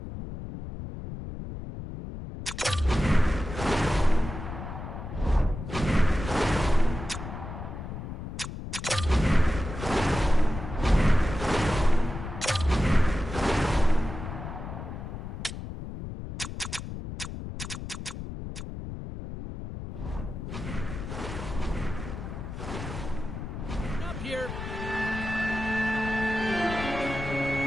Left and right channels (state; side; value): noise; left; rumble, 8 dB below the sound